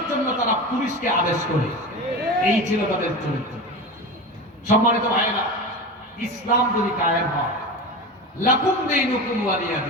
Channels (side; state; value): both; normal; correlation 0.26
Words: জন্য তারা পুলিশকে আদেশ করে। এই ছিল তাদের চরিত্র। সম্মানিত ভাইয়েরা, ইসলাম যদি কায়েম হয়, লাকুম দীনুকুম ওয়ালিয়া